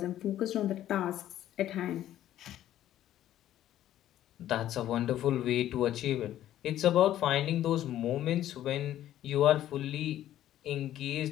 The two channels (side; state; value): right; quieter; 12.5 dB